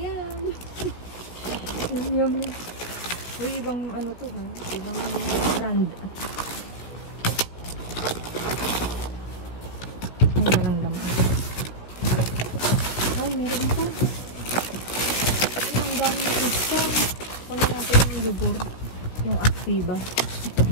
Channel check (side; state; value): right; late; 16 ms